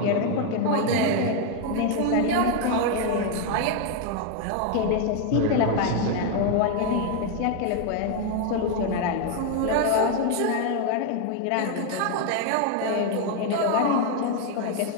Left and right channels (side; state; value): both; different; correlation 0.01